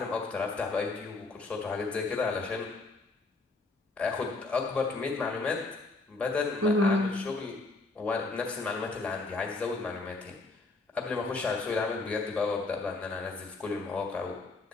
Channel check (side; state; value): right; quieter; 3.4 dB